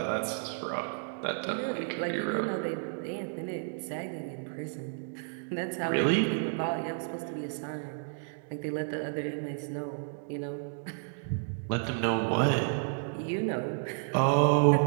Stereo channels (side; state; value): left; silent; digital silence